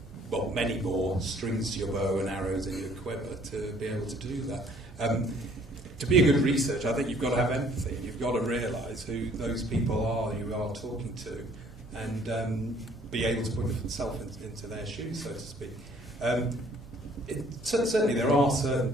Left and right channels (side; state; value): both; normal; correlation 0.59